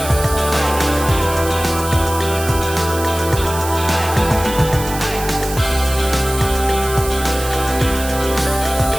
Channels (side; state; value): right; noise; hiss, 10 dB below the sound